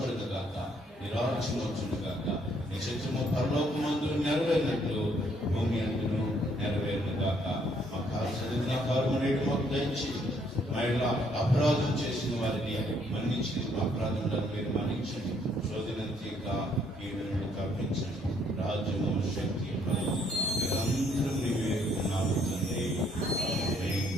గాక, నీ రాజ్యం వచ్చును గాక, నీ చిత్తము పరలోకమందు నెరవేరినట్లు భూమి అందును నెరవేరును గాక. మా కాల్సిన కారుమనేటు మాకు దయచేసి మహిళ అపరాధం చేసిన వారిని మన్నించి మా అపరాధములను మీరు మన్నించండి. శోధనంతేక కీడును తప్పించండి. రాజ్యము శక్తి నిరంతరం నీవే ఉన్నావు తండ్రి.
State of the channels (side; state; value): both; normal; correlation 0.67